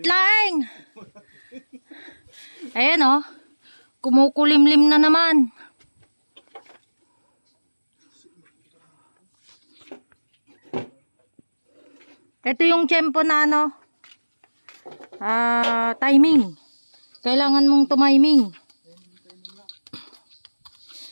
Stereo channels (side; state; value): both; inverted; correlation -1.00